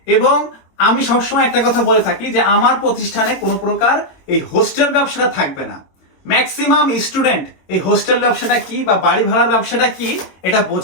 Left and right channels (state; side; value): late; right; 22 ms